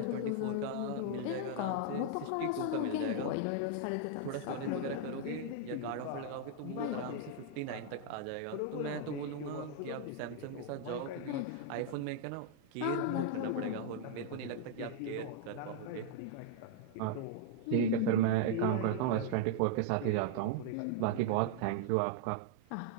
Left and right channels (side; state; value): both; different; correlation 0.00